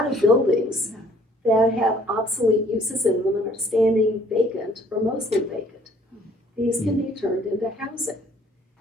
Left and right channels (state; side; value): normal; both; correlation 0.59